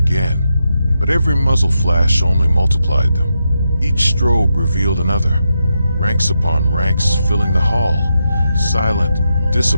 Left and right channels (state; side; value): inverted; both; correlation -0.85